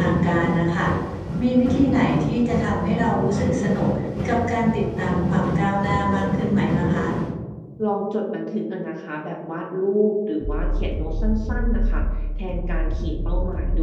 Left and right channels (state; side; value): identical; both; correlation 1.00